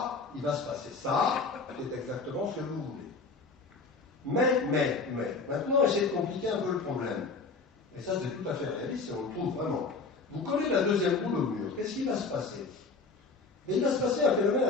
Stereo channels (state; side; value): quieter; right; 4.2 dB